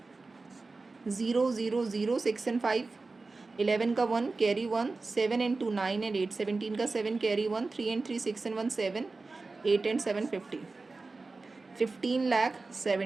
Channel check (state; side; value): quieter; left; 3.7 dB